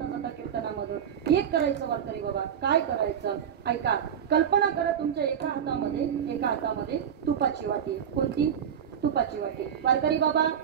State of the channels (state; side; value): quieter; left; 8.5 dB